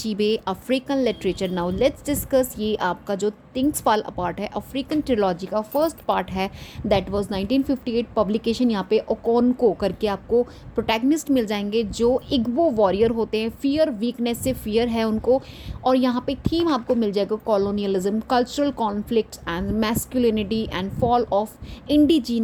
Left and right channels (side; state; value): both; identical; correlation 1.00